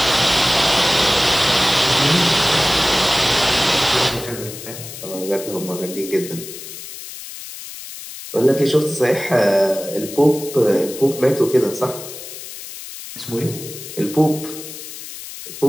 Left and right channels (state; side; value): noise; left; hiss, 12 dB below the sound